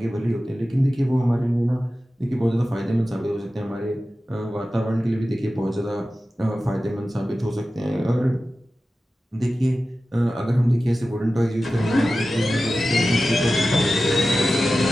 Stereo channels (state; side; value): normal; both; correlation 0.94